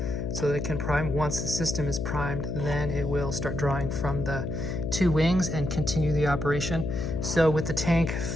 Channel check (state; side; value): noise; left; hum, 3 dB below the sound